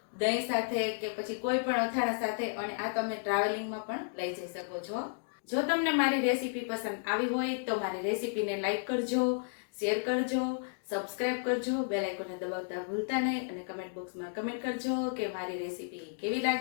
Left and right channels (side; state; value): right; silent; digital silence